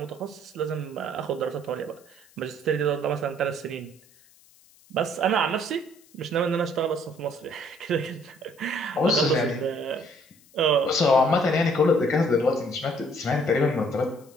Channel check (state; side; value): noise; left; hiss, 28 dB below the sound